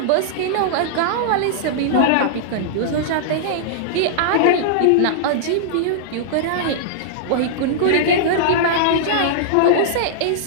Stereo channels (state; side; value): different; both; correlation -0.02